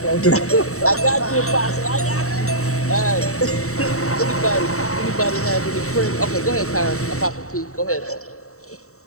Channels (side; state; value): right; late; 0.64 ms